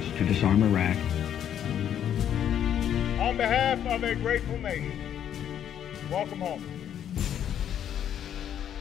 to disarm Iraq. On behalf of a grateful nation, welcome home.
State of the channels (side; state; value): right; quieter; 9.8 dB